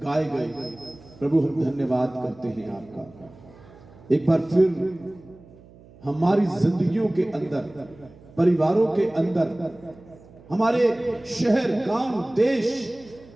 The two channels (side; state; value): right; noise; hum, 23 dB below the sound